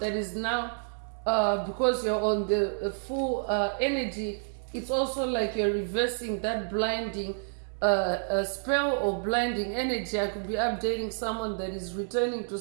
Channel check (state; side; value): silent; left; 58 dB below the other